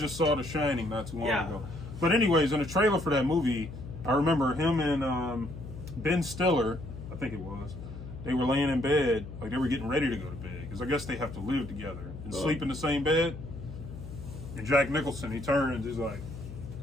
saw The Shining not too long ago. But anyways, in the trailer for that movie, I remember him and Ben Stiller, I think it was, they were laying in bed, like they were getting ready to go to bed, because I guess they have to live together and sleep in the same bed. And Jack Nicholson, he turns, he's like,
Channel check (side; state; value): left; noise; hum, 11 dB below the sound